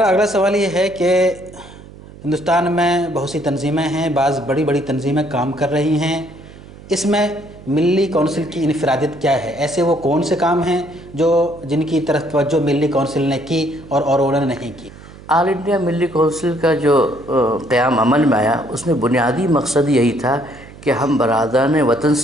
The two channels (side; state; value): right; noise; hum, 19 dB below the sound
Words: اگلا سوال یہ ہے کہ ہندوستان میں بہت سی تنظیمیں ہیں، بعض بڑی بڑی تنظیمیں کام کر رہی ہیں، اس میں ملی کونسل کی انفرادیت کیا ہے؟ ایسے وہ کون سے کام ہیں جن کی طرف توجہ ملی کونسل نے کی اور انہوں نے نہیں کی؟ آل انڈیا ملی کونسل کا جو قیام عمل میں آیا، اس میں بنیادی مقصد یہی تھا کہ ہم برادران وطن